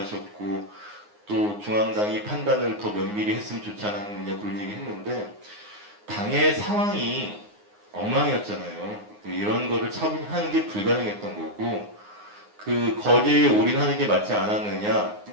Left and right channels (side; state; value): left; late; 9.6 ms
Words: 또 중앙당이 판단을 더 면밀히 했으면 좋지 않았느냐 그런 얘기 했는데 당의 상황이 엉망이었잖아요. 이런 거를 처분하는 게 불가능했던 거고 그 거제에 올인하는 게 맞지 않았느냐